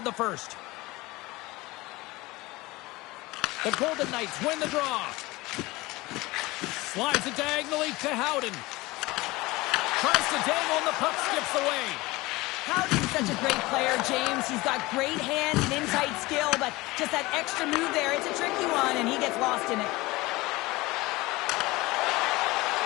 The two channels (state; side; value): quieter; right; 21.0 dB